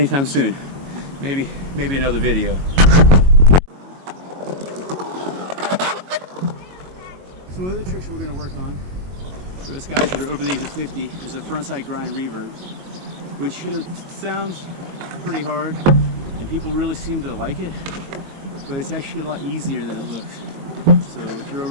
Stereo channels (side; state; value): left; late; 22 ms